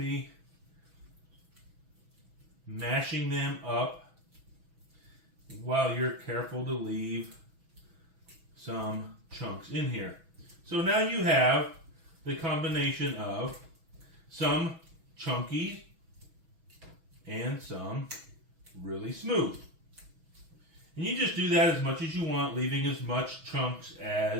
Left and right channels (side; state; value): left; late; 6.2 ms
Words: mashing them up while you're careful to leave some chunks in here. So now you have the combination of some chunky and some really smooth. And you just do that as much as you want, leaving as much chunks